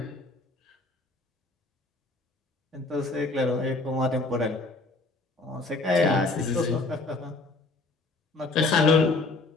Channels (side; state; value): right; quieter; 3.3 dB